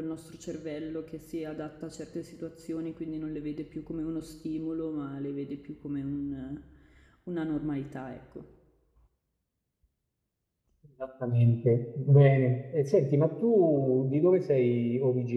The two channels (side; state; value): both; identical; correlation 1.00